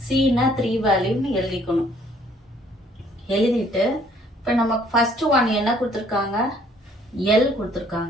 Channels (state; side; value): normal; both; correlation 0.61